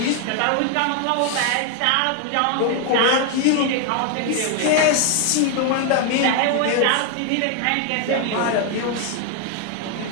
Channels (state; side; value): different; both; correlation 0.00